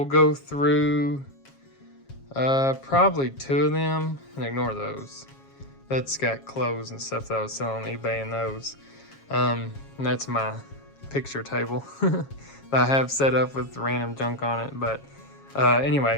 go through probably 2 of them and ignore those. That's got clothes and stuff that I was selling on eBay and those. And that's my picture table that I have set up with random junk on it. But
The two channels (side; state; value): right; late; 7.3 ms